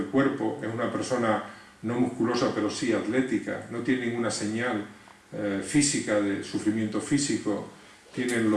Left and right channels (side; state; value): both; identical; correlation 1.00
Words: cuerpo, es una persona no musculosa pero sí atlética, no tiene ninguna señal física de sufrimiento físico, tiene